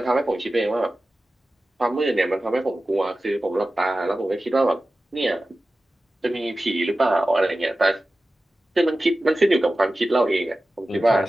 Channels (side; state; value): both; normal; correlation 0.95